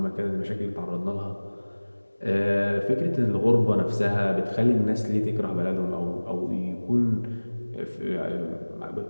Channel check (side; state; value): both; inverted; correlation -1.00